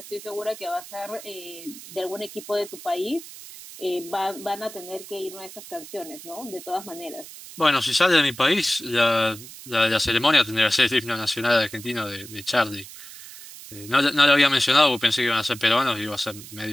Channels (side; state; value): right; noise; hiss, 15 dB below the sound